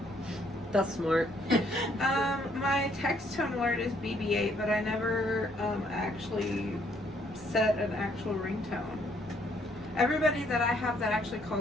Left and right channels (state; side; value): normal; both; correlation 0.68